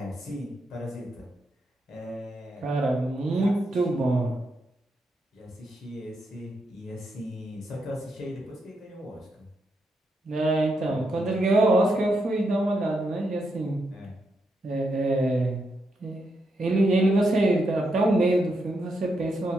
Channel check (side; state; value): both; normal; correlation 0.82